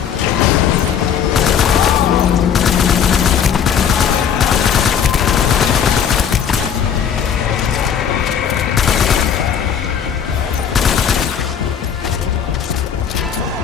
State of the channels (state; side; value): quieter; right; 8.0 dB